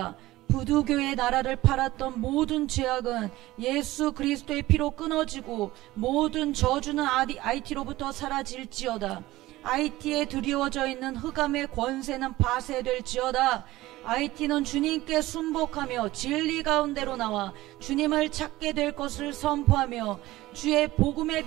부두교의 나라를 팔았던 모든 죄악은 예수 그리스도의 피로 끊어지고 모든 저주는 IT로부터 사라질지어다. IT에 드리워져 있는 흑암의 권세는 파쇄될지어다. IT는 주님께 순복하며 진리 가운데로 나와 주님을 찾게 될 것을 선포하며 주의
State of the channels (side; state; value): left; quieter; 17.5 dB